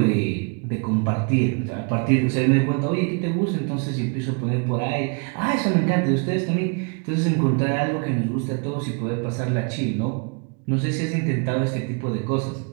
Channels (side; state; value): left; quieter; 36.3 dB